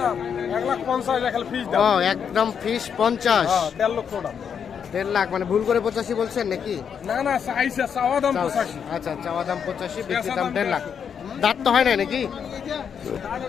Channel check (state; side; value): quieter; right; 7.4 dB